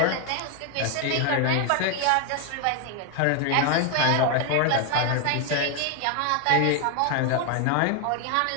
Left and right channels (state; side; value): different; both; correlation 0.01